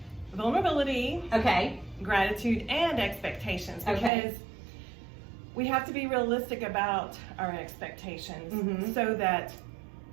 vulnerability, gratitude, and expectations, because we have to be realistic about our expectations so that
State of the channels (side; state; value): left; drops out; at 4.1 s